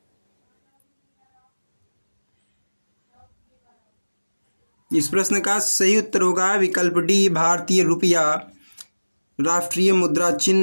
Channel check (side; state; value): both; inverted; correlation -1.00